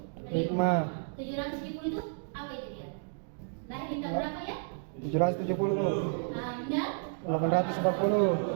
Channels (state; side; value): silent; left; digital silence